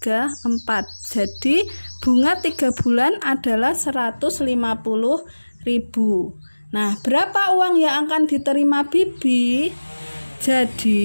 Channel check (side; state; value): both; inverted; correlation -1.00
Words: 4. Jadi bunga 3 bulan adalah 150.000. Nah, berapa uang yang akan diterima Bibi?